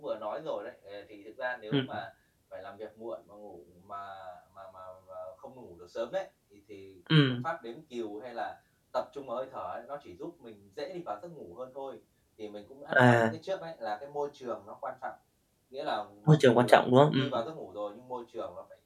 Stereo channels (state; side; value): identical; both; correlation 1.00